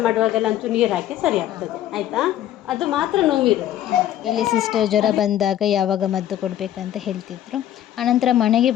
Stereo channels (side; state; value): right; quieter; 11.9 dB